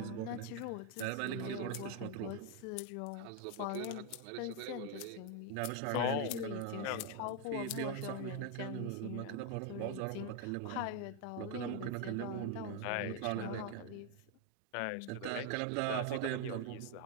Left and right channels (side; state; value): both; different; correlation 0.01